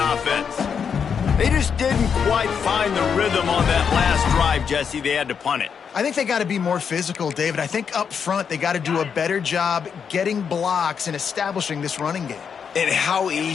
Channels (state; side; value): quieter; right; 6.9 dB